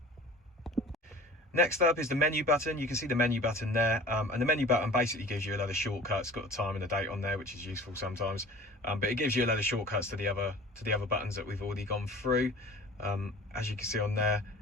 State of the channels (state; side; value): normal; both; correlation 0.43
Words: Next up is the menu button. You can see the menu button there, and the menu button basically gives you a load of shortcuts. It's got the time and the date on there, which is useful sometimes, but it gives you a load of shortcuts to the other buttons that we've already gone through. As you can see on there,